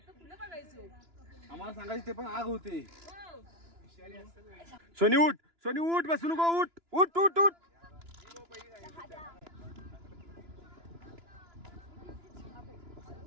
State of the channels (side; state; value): left; late; 2.9 ms